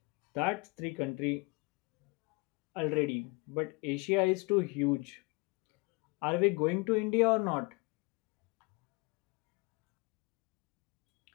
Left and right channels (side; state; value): right; quieter; 28.7 dB